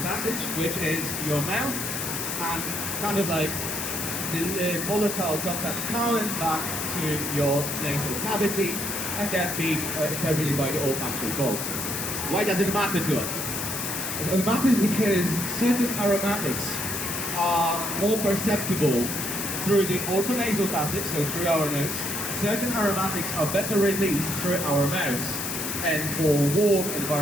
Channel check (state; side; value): noise; left; hiss, 3 dB below the sound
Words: passage, which is your mouth, and kind of like the volatile compounds coming back to your nasal cavity, and then being interpreted by the olfactory bulb. Why does it matter to us? It matters because certain aromatics are more perceptible through the orthonasal passage, so through our nose. Certain aromatics are better released through our mouths and more warm